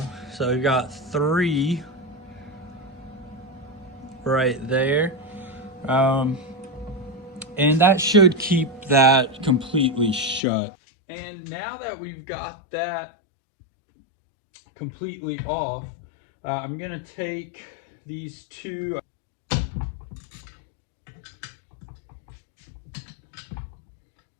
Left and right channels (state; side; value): drops out; right; at 10.4 s